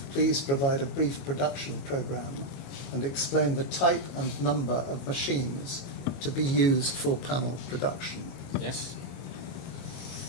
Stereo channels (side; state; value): right; late; 22 ms